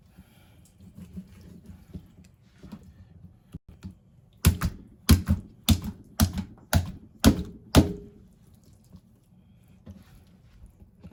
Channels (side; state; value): both; identical; correlation 1.00